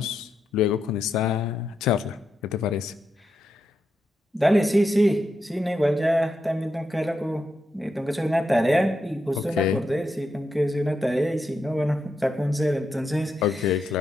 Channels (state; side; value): normal; both; correlation 0.84